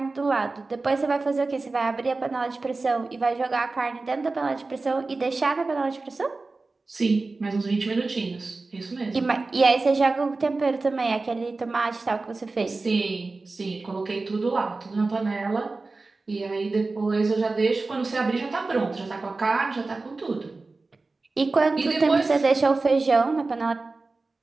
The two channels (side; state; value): left; quieter; 3.6 dB